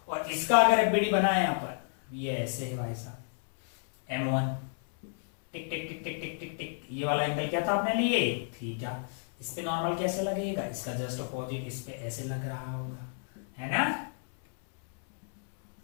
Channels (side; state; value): right; silent; 57 dB below the other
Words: और इसका अगर एफबीडी बनाए यहाँ पर, ये ऐसे है भाई साहब, M1 टिक टिक टिक टिक टिक टिक टिक, ये वाला एंगल क्या था अपने लिए, थीटा। इस पे नॉर्मल कैसे लगेगा, इसका जस्ट अपोजिट इस पे ऐसे लग रहा होगा, है ना।